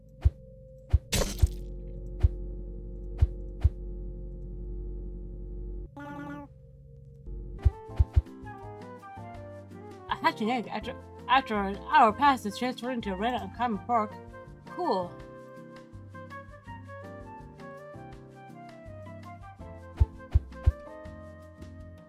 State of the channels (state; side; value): identical; both; correlation 1.00